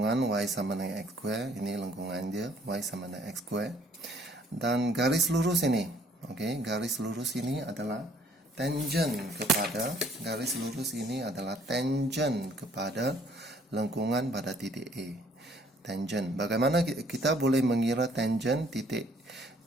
y sama dengan x square, ini lengkungan dia, y sama dengan x square. Dan garis lurus ini, garis lurus ini adalah tangent kepada lengkungan pada titik A. Tangent. Bagaimana kita boleh mengira tangent titik?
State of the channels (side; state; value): both; normal; correlation 0.61